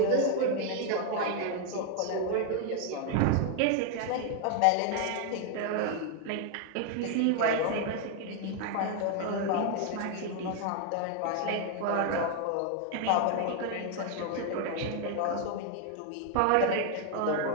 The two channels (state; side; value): different; both; correlation 0.00